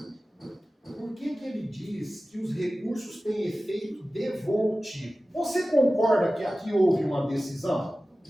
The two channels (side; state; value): both; normal; correlation 0.96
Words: por que ele diz que os recursos têm efeito devolutivo? Você concorda que aqui houve uma decisão?